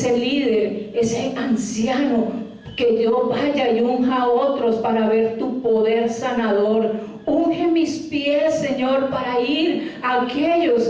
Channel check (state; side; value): identical; both; correlation 1.00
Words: líder, ese anciano, que yo vaya y unja a otros para ver tu poder sanador. Unge mis pies, Señor, para ir a aquellos